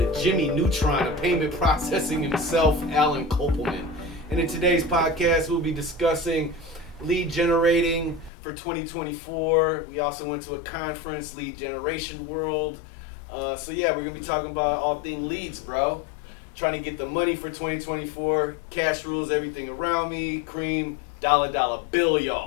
Jimmy Neutron of payment processing himself, Alan Kopelman. And in today's podcast, we'll be discussing lead generating for 2024. We also went to a conference, Lead Generation World. So yeah, we're going to be talking about all things leads, bro. Trying to get the money for 2024. Cash rules everything around me. Cream, dollar bill,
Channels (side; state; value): right; drops out; at 8.3 s